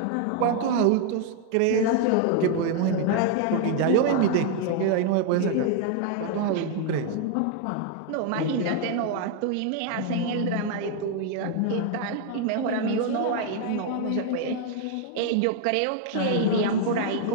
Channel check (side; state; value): both; different; correlation 0.00